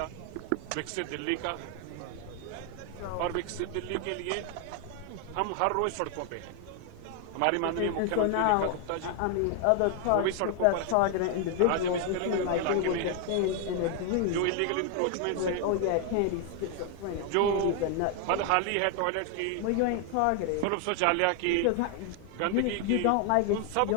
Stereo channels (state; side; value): different; both; correlation 0.00